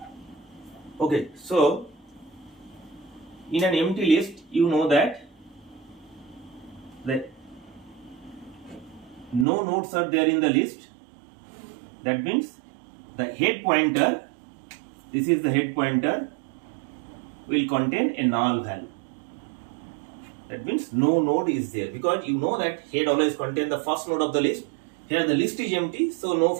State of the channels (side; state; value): left; drops out; at 9.5 s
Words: Okay, so in an empty list, you know that no nodes are there in the list. That means the head pointer, this is the head pointer, will contain a null value. That means no node is there, because you know that head always contain the first node of the list. Here the list is empty, so no